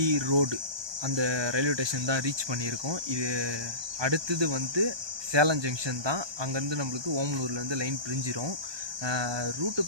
ரோடு அந்த ரயில்வே ஸ்டேஷன் தான் ரீச் பண்ணியிருக்கோம். இது அடுத்தது வந்து சேலம் ஜங்ஷன் தான். அங்கேருந்து நம்மளுக்கு ஓமலூர்லேருந்து லைன் பிரிஞ்சிடும். ரூட்டை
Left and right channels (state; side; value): late; left; 1.2 ms